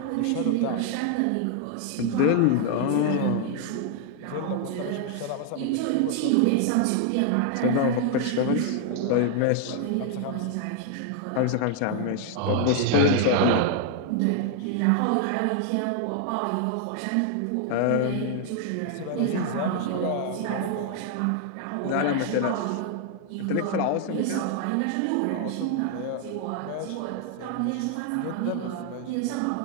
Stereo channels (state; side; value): different; both; correlation 0.00